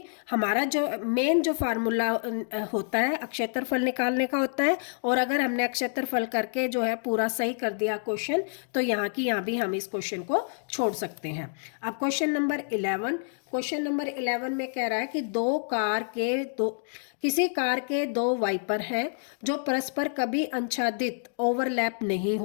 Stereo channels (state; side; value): silent; right; digital silence